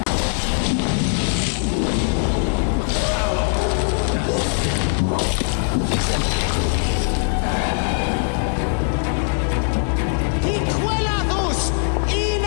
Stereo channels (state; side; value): silent; right; 60 dB below the other